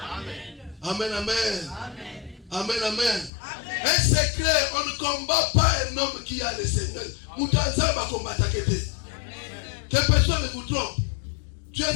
Amen, amen. Amen, amen. Un secret, on ne combat pas un homme qui a le Seigneur. Moutanza va combattre. Que personne ne vous trompe. Tu es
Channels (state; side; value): drops out; right; at 3.3 s